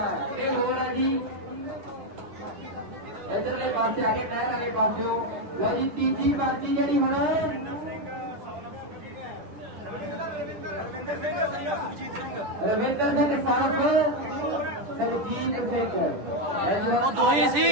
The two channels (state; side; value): late; left; 10 ms